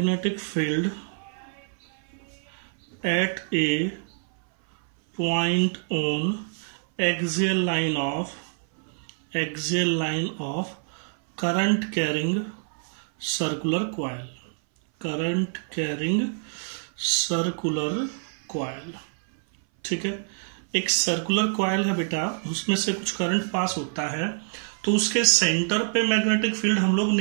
field at A point on axial line of current carrying circular coil. ठीक है, एक सर्कुलर कॉइल है बेटा, उसमें से कुछ करंट पास होता है, तो उसके सेंटर पे मैग्नेटिक फील्ड हम लोग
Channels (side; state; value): left; silent; 58 dB below the other